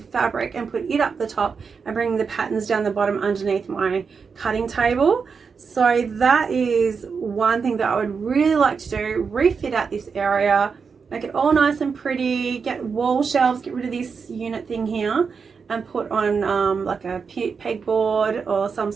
and put it up the top and bring the patterns down the bottom underneath my cutting table. So that is one thing that I would really like to do, refit out this area, make it all nice and pretty, get wall shelves, get rid of this unit thing here and put on like a pegboard or some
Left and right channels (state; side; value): quieter; left; 5.6 dB